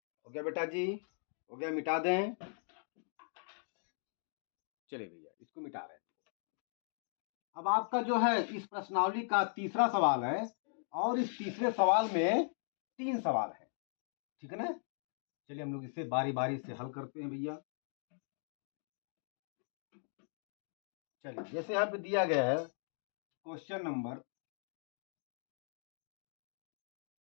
हो गया बेटा जी, हो गया, मिटा दें। चलिए भैया इसको मिटा रहे हैं। अब आपका जो है इस प्रश्नावली का तीसरा सवाल है, और इस तीसरे सवाल में 3 सवाल है, ठीक है ना। चलिए हम लोग इसे बारी बारी से हल करते हैं भैया। चलिए, जैसे यहाँ पे दिया गया है क्वेश्चन नंबर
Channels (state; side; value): silent; right; digital silence